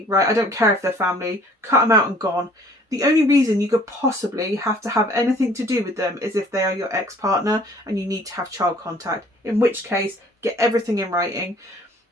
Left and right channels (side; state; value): both; normal; correlation 0.55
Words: right? I don't care if they're family. Cut them out and gone. The only reason you could possibly have to have anything to do with them is if they are your ex-partner and you need to have child contact. In which case, get everything in writing,